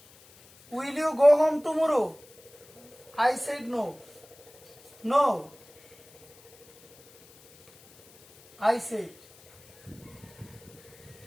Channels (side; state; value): left; noise; hiss, 26 dB below the sound